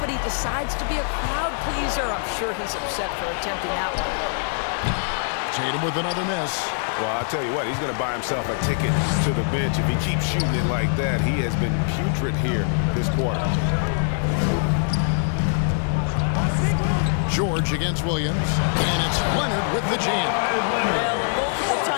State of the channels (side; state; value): right; silent; digital silence